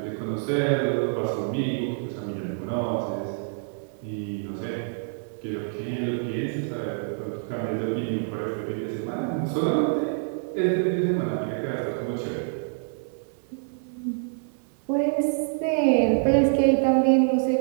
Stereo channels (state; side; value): silent; left; 61 dB below the other